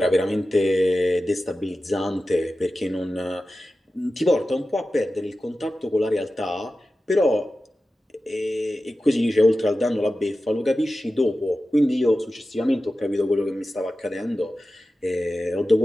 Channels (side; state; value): both; normal; correlation 0.94